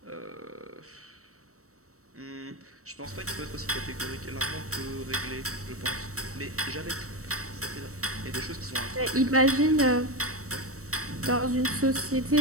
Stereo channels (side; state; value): left; late; 0.65 ms